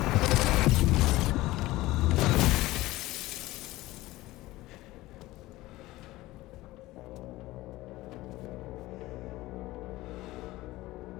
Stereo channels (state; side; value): quieter; right; 18.2 dB